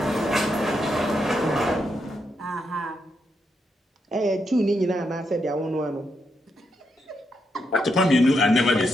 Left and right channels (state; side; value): normal; both; correlation 0.81